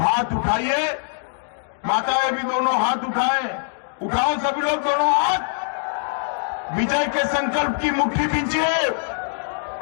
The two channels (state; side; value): silent; right; 64 dB below the other